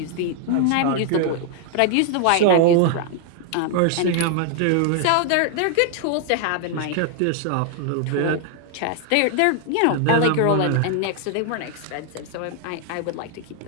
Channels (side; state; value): both; different; correlation 0.00